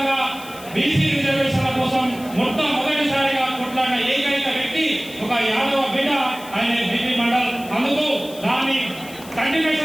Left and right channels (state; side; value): noise; left; hiss, 18 dB below the sound